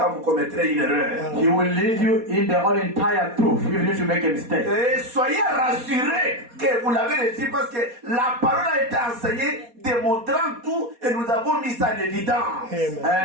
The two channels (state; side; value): late; left; 4.2 ms